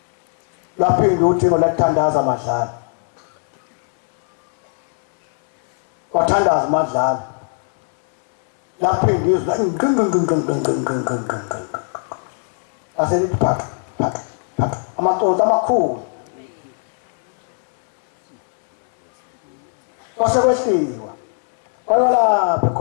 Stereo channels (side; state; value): right; silent; 64 dB below the other